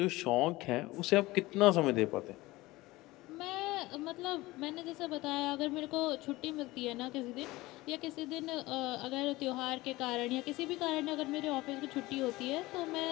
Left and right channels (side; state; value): right; quieter; 19.6 dB